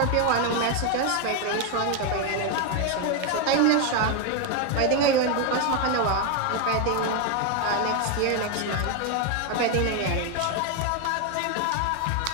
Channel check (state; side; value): different; both; correlation 0.01